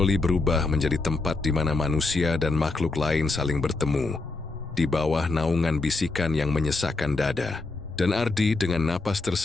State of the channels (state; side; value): quieter; right; 3.5 dB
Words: berubah menjadi tempat di mana manusia dan makhluk lain saling bertemu, di bawah naungan bisikan yang menyesakkan dada. Dan Ardi dengan napas